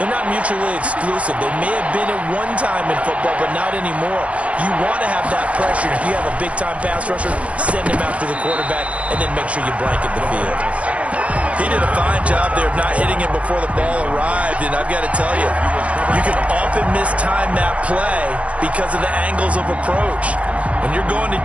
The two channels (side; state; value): left; late; 0.064 ms